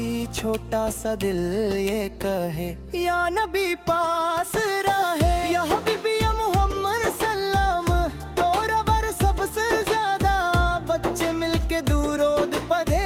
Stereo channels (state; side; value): identical; both; correlation 1.00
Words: छोटा सा दिल ये कहे, या नबी पास रहे। या हबीबी या मोहम्मद सल्लम, तोरा बर सबसे ज्यादा। बच्चे मिलके दूरोद पढ़े,